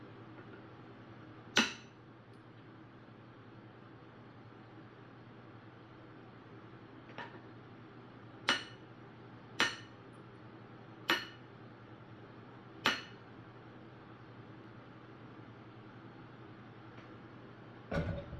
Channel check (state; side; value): identical; both; correlation 1.00